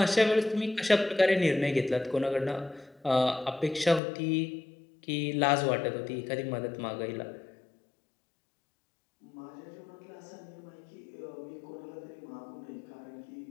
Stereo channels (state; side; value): drops out; right; at 4.0 s